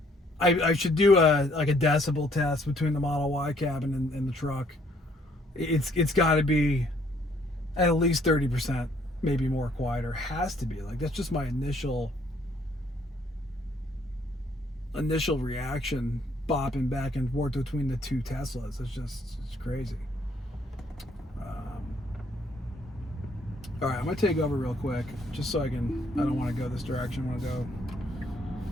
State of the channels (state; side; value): normal; both; correlation 0.65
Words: I should do a decibel test between the Model Y cabin and the truck. It's got to be at least 30%, maybe more quieter. Has to be. Like, that's just my initial reaction, bopping back and forth between the two Teslas. It's crazy. All right, I'm gonna take over real quick, just so I don't want to go this direction. I want to go